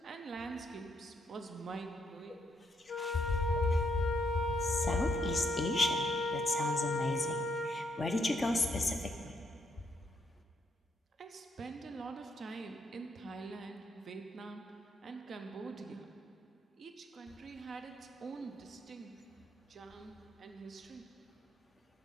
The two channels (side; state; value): both; normal; correlation 0.75